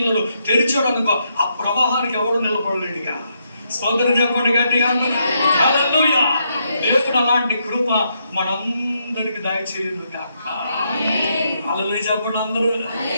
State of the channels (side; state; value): both; inverted; correlation -0.78